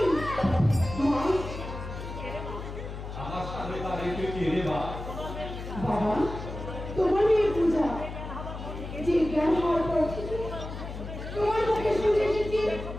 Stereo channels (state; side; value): noise; left; hum, 9 dB below the sound